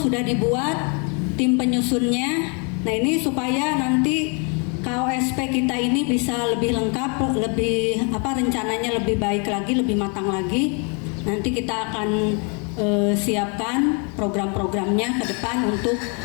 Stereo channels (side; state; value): right; quieter; 36.0 dB